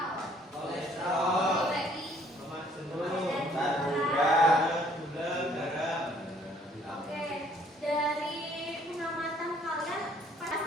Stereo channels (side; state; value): both; normal; correlation 0.61